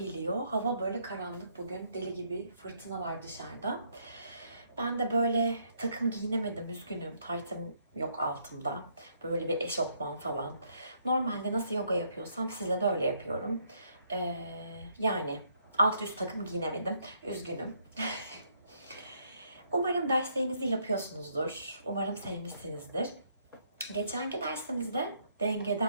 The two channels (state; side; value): inverted; both; correlation -0.71